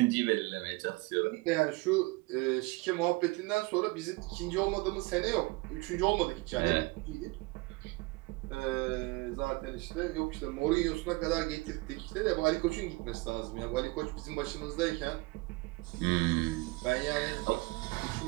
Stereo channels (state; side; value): quieter; left; 24.2 dB